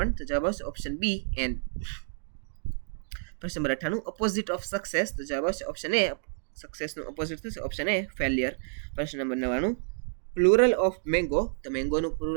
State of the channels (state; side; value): silent; left; digital silence